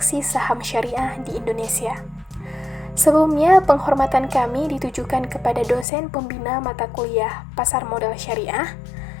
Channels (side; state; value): right; drops out; at 5.9 s